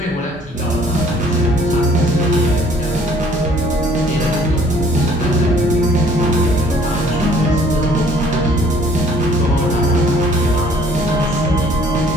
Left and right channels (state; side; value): normal; both; correlation 0.57